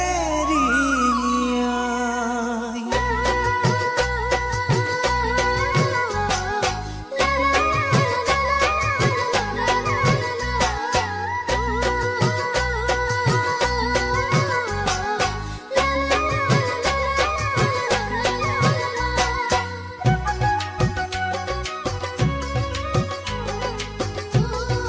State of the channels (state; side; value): identical; both; correlation 1.00